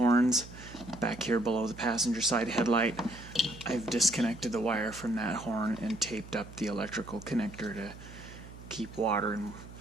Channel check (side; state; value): right; noise; hum, 16 dB below the sound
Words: back here below the passenger side headlight. I've disconnected the wire from that horn and taped up the electrical connector to keep water and